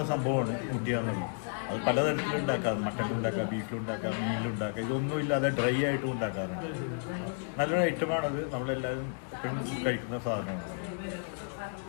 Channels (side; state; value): right; silent; 56 dB below the other